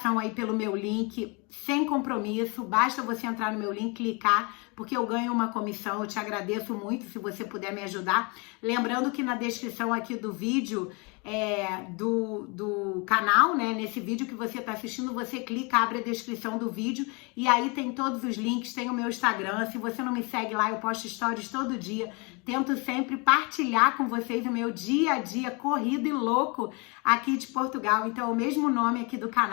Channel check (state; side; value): quieter; right; 30.4 dB